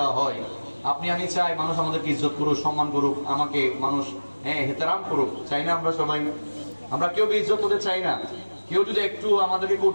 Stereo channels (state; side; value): inverted; both; correlation -1.00